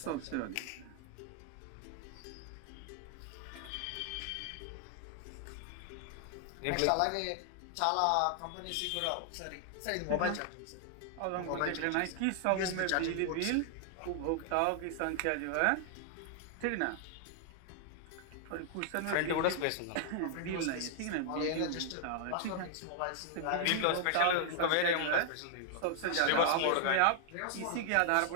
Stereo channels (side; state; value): both; different; correlation 0.00